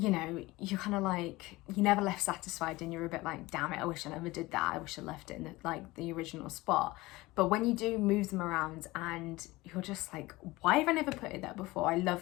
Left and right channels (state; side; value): quieter; right; 20.3 dB